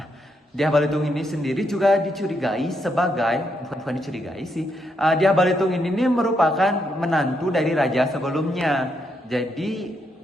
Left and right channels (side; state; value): both; normal; correlation 0.79